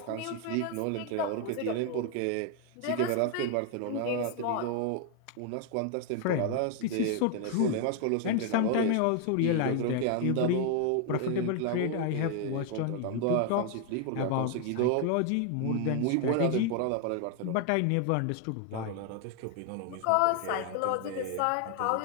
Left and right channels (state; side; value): different; both; correlation 0.00